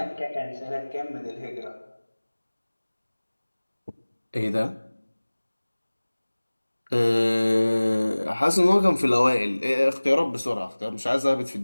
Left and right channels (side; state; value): both; inverted; correlation -1.00